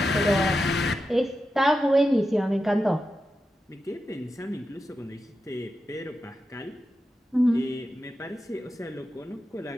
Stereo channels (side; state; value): both; normal; correlation 0.90